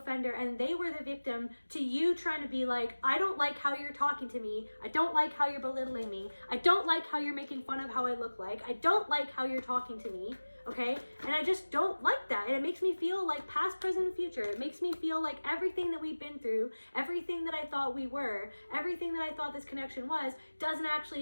and they were the victim, to you trying to be like, I don't like how you're talking to me, I don't like how you're belittling me, I don't like how you're making fun of how I look like, I don't like how you're talking to me, okay? And I just don't like that, and it makes me feel like past, present, and future. It makes me feel like everything that we've been through, everything that I thought we were, everything that I thought this connection was, doesn't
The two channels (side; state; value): both; inverted; correlation -1.00